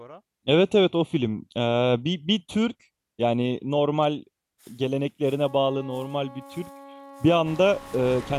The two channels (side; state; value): both; identical; correlation 1.00